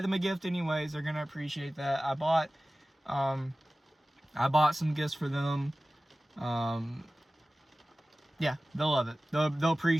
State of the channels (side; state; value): both; normal; correlation 0.97